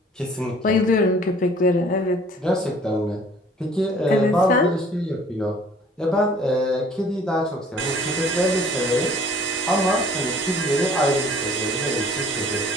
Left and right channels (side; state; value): both; normal; correlation 0.54